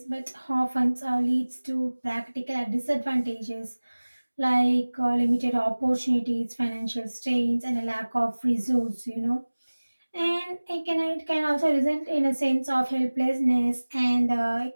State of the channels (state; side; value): inverted; both; correlation -1.00